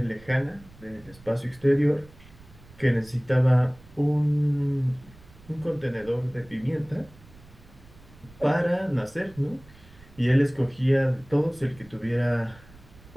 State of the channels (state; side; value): noise; right; rumble, 23 dB below the sound